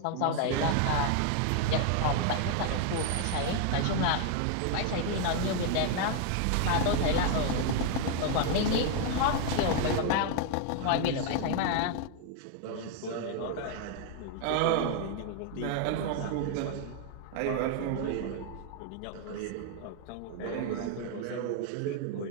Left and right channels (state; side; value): different; both; correlation 0.00